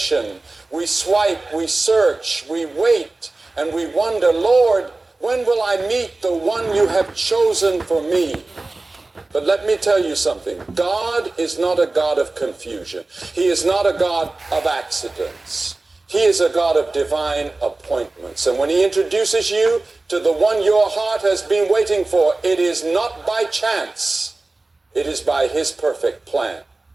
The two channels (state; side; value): quieter; left; 3.2 dB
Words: We swipe, we search, we wait, and we wonder, Lord, when will I meet the one you have chosen for me? But let me tell you something. God is not a God of confusion. He is not a God of accidents. He is a God of divine appointments. And when He introduces you to the one your heart has been waiting for, it is not by chance. It is by His perfect plan.